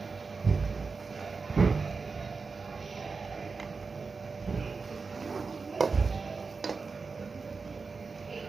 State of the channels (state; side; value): quieter; left; 4.6 dB